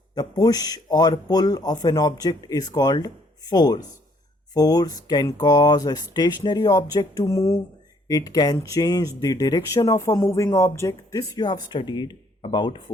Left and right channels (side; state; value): both; normal; correlation 0.65